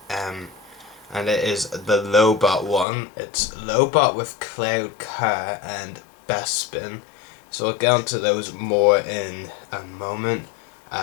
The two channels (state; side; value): drops out; right; at 2.9 s